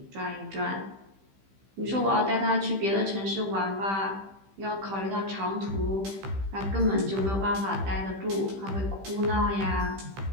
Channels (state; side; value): late; left; 15 ms